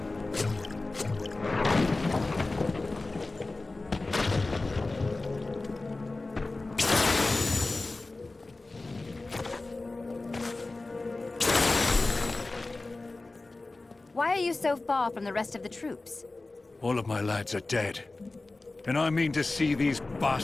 you so far from the rest of the troops? All of my lads are dead. And I mean to see these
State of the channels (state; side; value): quieter; right; 3.2 dB